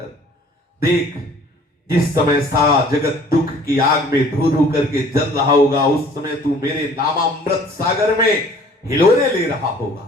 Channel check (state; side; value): normal; both; correlation 0.52